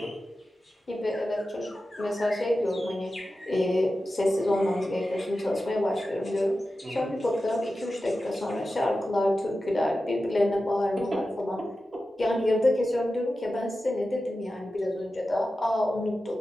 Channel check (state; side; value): normal; both; correlation 0.93